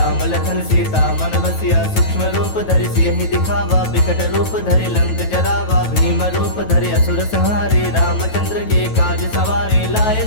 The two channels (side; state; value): right; late; 9.2 ms